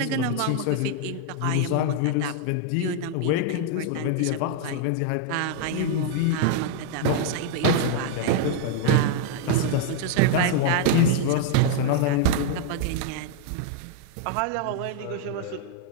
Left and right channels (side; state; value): both; different; correlation 0.00